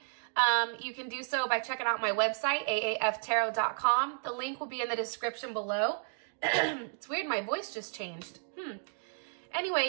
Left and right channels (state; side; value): silent; left; digital silence